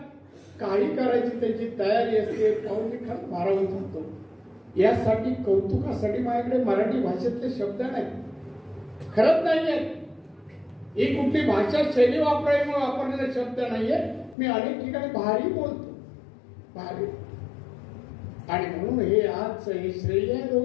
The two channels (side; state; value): right; drops out; at 14.4 s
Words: काही करायची त्यांची तयारी असते. पाहून मी खरं भारावून जातो. यासाठी कौतुकासाठी माझ्याकडे मराठी भाषेतले शब्द नाहीत, खरंच नाहीये. ही कुठली भाषा शैली वापरायमुळे वापरलेले शब्द नाहीये. मी अनेक ठिकाणी भारी बोलतो, भारी. आणि म्हणून हे आज हे श्रेय आहे